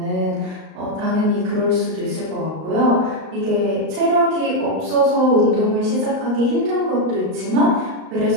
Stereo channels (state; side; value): late; left; 38 ms